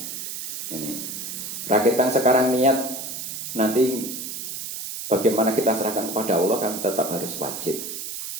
Ini rakyat sekarang niat, nanti bagaimana kita serahkan kepada Allah kan tetap harus wajib.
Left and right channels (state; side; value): noise; right; hiss, 6 dB below the sound